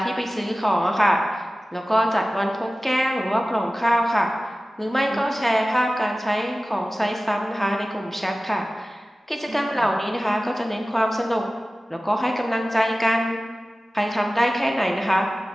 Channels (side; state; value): both; normal; correlation 0.96